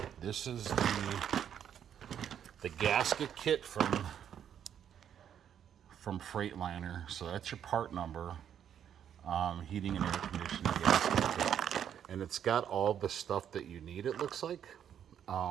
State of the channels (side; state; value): left; quieter; 9.2 dB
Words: This is the gasket kit from Freightliner. So that's your part number. Heating and air conditioning gasket kit. And it's got all the stuff that you need, it looks like.